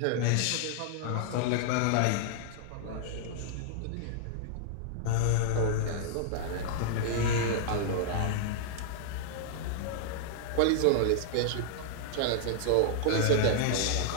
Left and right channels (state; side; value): different; both; correlation -0.01